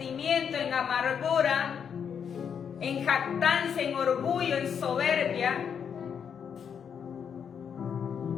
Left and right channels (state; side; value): quieter; right; 7.5 dB